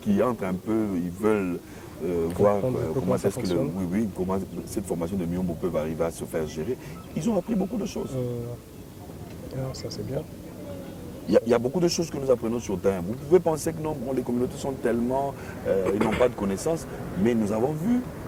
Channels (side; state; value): both; identical; correlation 1.00